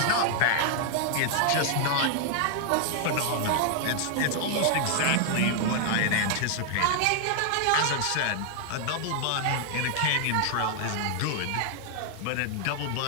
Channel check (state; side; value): different; both; correlation 0.00